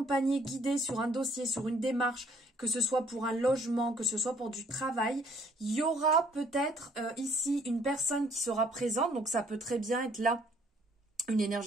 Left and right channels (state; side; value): normal; both; correlation 0.62